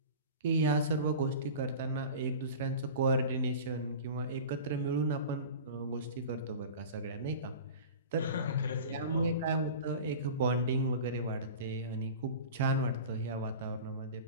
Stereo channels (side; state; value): both; inverted; correlation -0.35